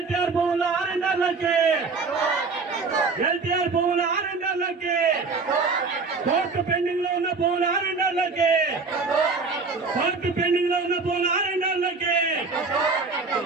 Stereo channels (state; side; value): quieter; left; 4.4 dB